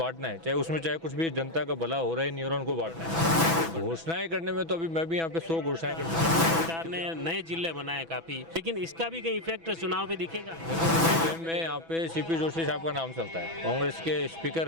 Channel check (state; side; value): late; left; 6.1 ms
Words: है, चाहे कुछ भी, जनता का भला हो रहा है नहीं हो रहा, उनको बांटना है। घोषणाएं करने में तो अभी मैं भी यहाँ पे 100 घोषणाएं कर चुका हूँ। सरकार ने नए जिले बनाए काफ़ी, लेकिन इसका भी कहीं इफेक्ट चुनाव पे दिखेगा? देखो, जिले में यहाँ पे सीपी जोशी साहब का नाम चलता है, कांग्रेस के स्पीकर